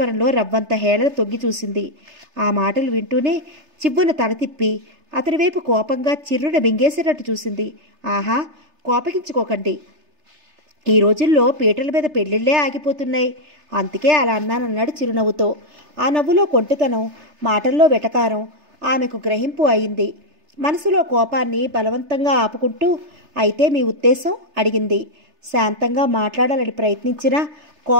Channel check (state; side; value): late; left; 3.3 ms